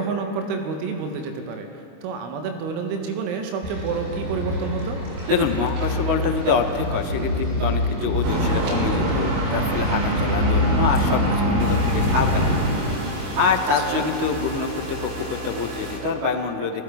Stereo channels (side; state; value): left; late; 25 ms